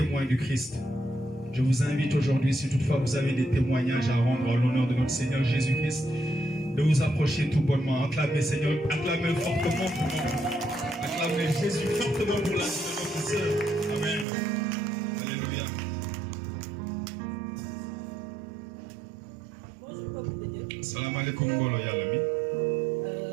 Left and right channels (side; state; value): left; drops out; at 14.2 s